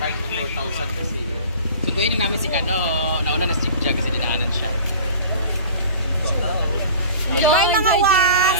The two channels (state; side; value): inverted; both; correlation -0.42